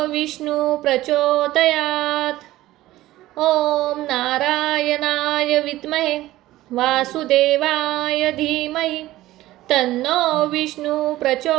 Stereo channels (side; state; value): left; quieter; 16.2 dB